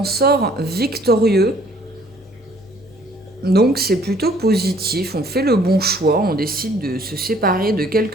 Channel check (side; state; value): both; normal; correlation 0.59